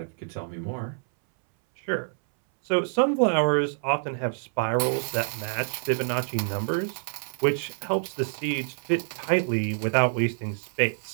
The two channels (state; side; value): silent; left; 60 dB below the other